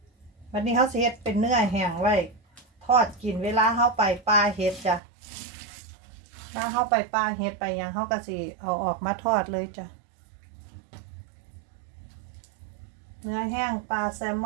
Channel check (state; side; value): drops out; left; at 5.0 s